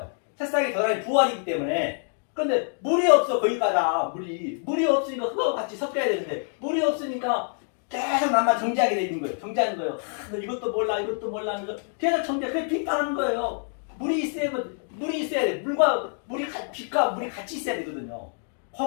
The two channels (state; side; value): silent; right; 57 dB below the other